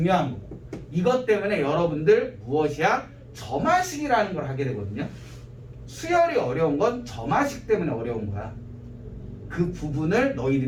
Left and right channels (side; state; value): both; identical; correlation 1.00